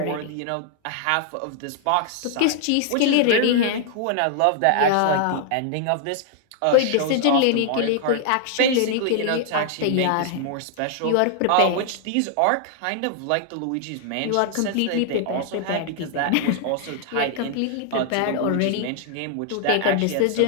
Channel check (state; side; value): different; both; correlation 0.00